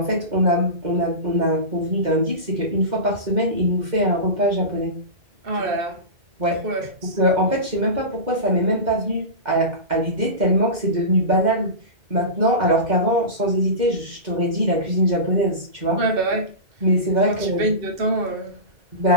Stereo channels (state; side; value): late; left; 2.1 ms